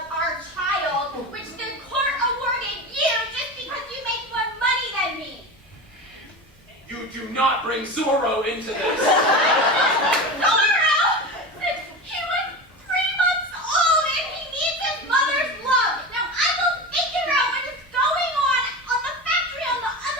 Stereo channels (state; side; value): normal; both; correlation 0.26